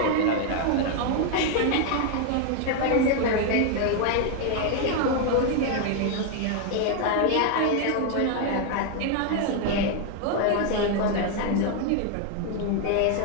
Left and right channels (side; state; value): both; different; correlation 0.00